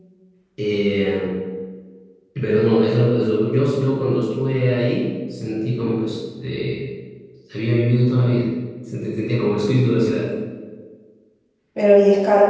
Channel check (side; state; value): both; identical; correlation 1.00